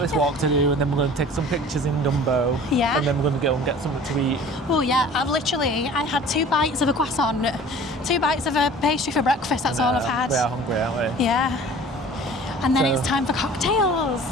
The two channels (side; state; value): both; normal; correlation 0.45